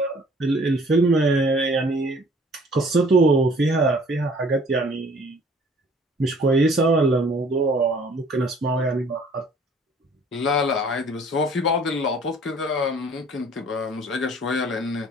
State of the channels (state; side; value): normal; both; correlation 0.54